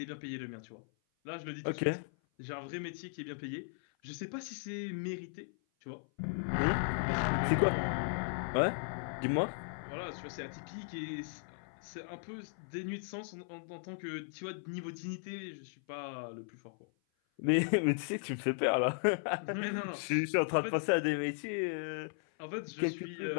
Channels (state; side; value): silent; right; 53 dB below the other